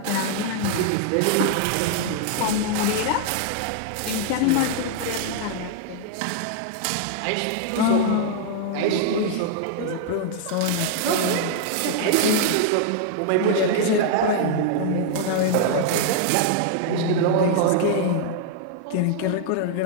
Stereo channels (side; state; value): both; different; correlation -0.01